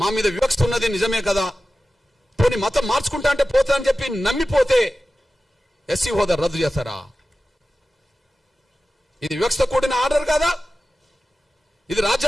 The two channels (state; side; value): normal; both; correlation 0.95